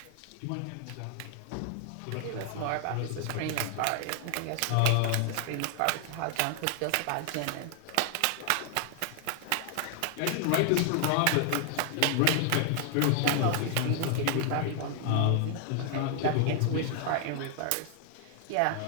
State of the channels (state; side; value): different; both; correlation 0.00